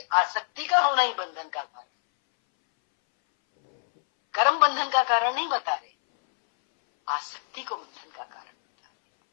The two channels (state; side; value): silent; right; 61 dB below the other